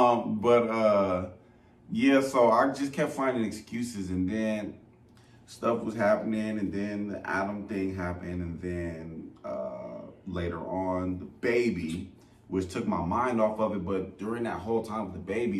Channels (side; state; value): both; identical; correlation 1.00